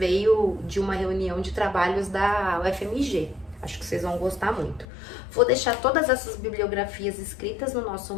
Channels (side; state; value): right; drops out; at 4.9 s